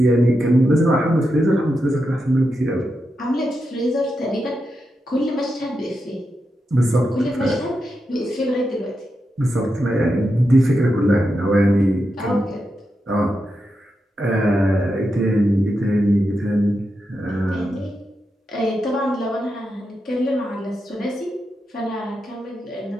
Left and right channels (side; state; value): both; normal; correlation 0.87